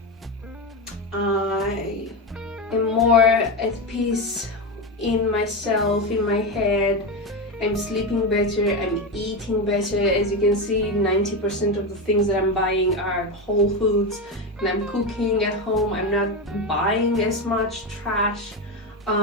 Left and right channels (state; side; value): normal; both; correlation 0.15